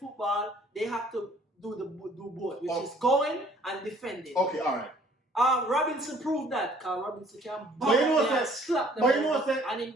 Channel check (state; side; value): normal; both; correlation 0.58